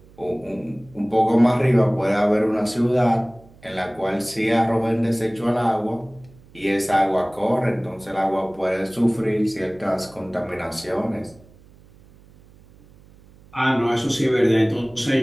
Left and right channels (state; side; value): noise; right; hum, 26 dB below the sound